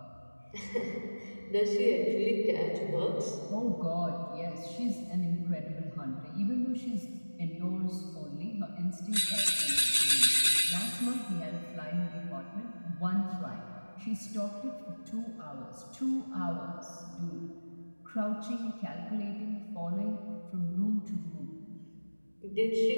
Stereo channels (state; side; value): inverted; both; correlation -1.00